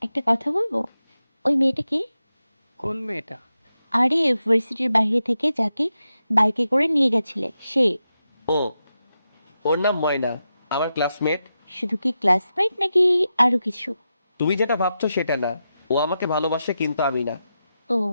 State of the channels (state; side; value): inverted; both; correlation -0.88